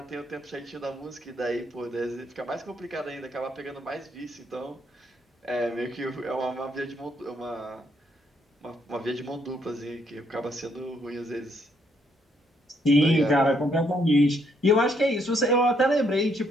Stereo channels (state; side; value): normal; both; correlation 0.72